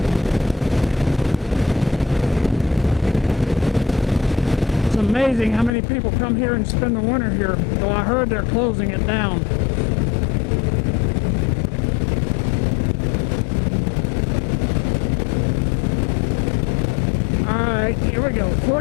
It's amazing how many people come here and spend the winter here, though I heard they're closing it down. Alright, here we go.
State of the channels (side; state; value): right; drops out; at 5.7 s